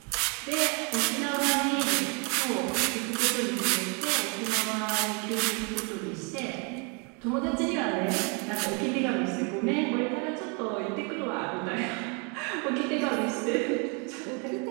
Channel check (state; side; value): quieter; left; 34.3 dB